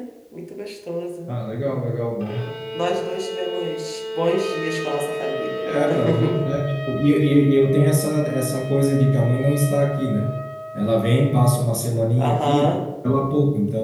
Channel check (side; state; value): both; identical; correlation 1.00